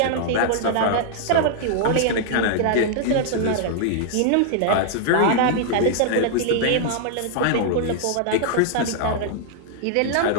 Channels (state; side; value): different; both; correlation -0.01